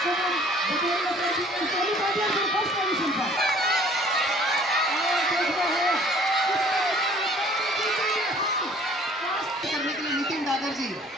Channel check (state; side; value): normal; both; correlation 0.54